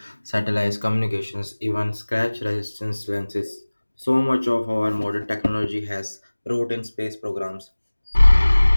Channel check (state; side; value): inverted; both; correlation -1.00